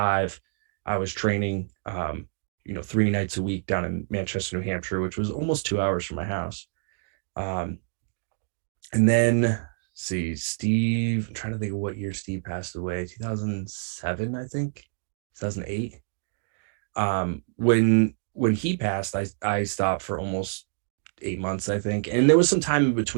I was training, 3 nights a week down in Manchester, New Hampshire, which was almost 2 hours from my house. And then Steve, I'm trying to think of what year Steve passed away. 2007, I think, 2008. When he passed, I stopped for almost 8 months, I think. And there was some time in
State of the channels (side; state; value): left; silent; digital silence